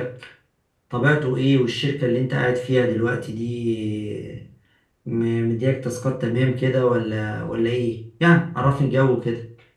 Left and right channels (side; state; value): both; identical; correlation 1.00